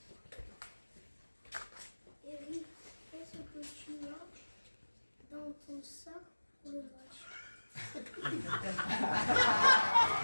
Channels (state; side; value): inverted; both; correlation -1.00